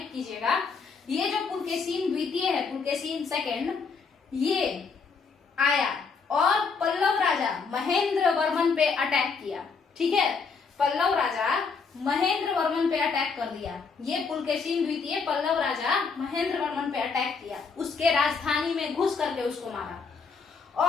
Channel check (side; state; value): right; quieter; 5.1 dB